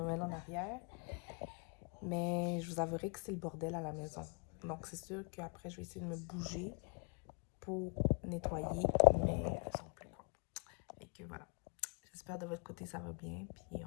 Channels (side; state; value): right; quieter; 36.5 dB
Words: en arrière. Mais je vous avouerai que c'est le bordel à la maison. Donc, c'est sûr qu'après, je vais essayer de me bouger pour nettoyer, mais sans plus quoi. Et que voilà. J'espère de votre côté, ça va bien. Puis,